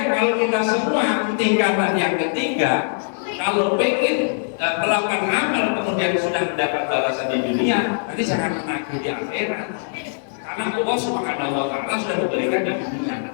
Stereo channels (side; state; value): right; silent; digital silence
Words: kalau kita semua tingkatan yang ketiga, kalau pengen melakukan amal kemudian sudah mendapat balasan di dunia, nanti jangan menagih di akhirat. Karena Allah Subhanahu wa taala sudah memberikan di dunia